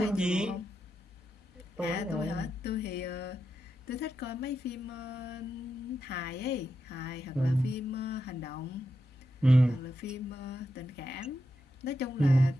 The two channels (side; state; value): both; normal; correlation 0.86